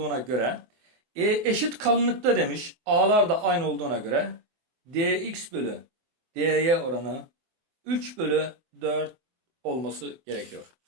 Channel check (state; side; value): late; left; 24 ms